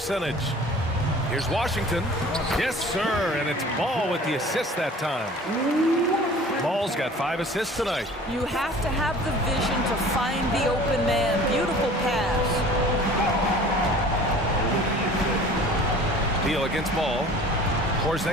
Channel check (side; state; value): both; normal; correlation 0.46